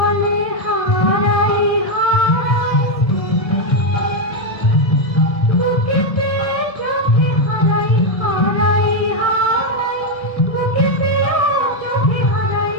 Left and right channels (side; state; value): right; late; 1.7 ms